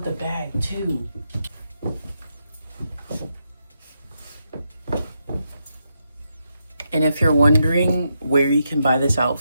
the bag too. And if you're wondering where you can buy this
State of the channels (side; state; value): both; inverted; correlation -0.83